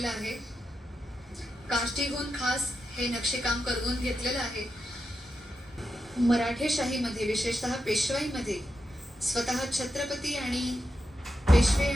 आहे. काष्टीहून खास हे नक्षीकाम करवून घेतलेलं आहे. मराठेशाहीमध्ये विशेषतः पेशवाईमध्ये स्वतः छत्रपती आणि पेशवे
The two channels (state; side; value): normal; both; correlation 0.87